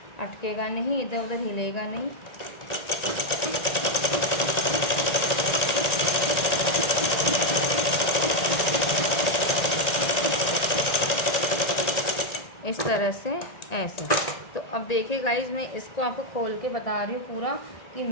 अटकेगा नहीं, इधर उधर हिलेगा नहीं। इस तरह से ऐसे। तो अब देखिए गाइज, मैं इसको आपको खोल के बता रही हूँ पूरा कि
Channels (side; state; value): right; late; 1.9 ms